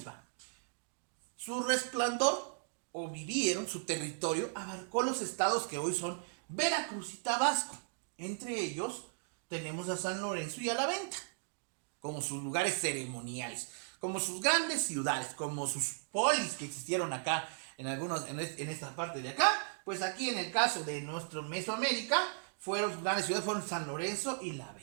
va. Su resplandor, o vivieron, su territorio, abarcó los estados que hoy son Veracruz y Tabasco. Entre ellos tenemos a San Lorenzo y a La Venta, como sus lugares ceremoniales, como sus grandes ciudades, como sus polis que existieron acá, en esta parte de acá. Pues aquí en el caso de nuestro Mesoamérica, sus grandes ciudades fueron San Lorenzo y La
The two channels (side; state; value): left; silent; digital silence